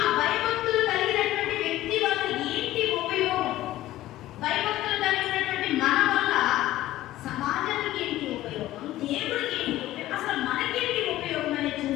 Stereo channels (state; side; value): quieter; right; 15.3 dB